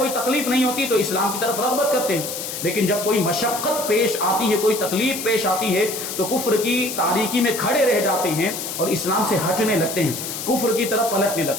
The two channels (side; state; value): left; noise; hiss, 6 dB below the sound